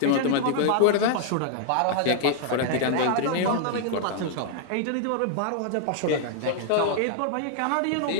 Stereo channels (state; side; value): different; both; correlation 0.00